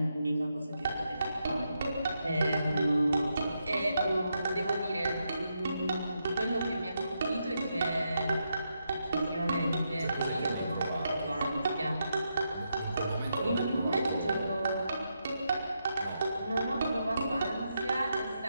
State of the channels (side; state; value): both; inverted; correlation -0.83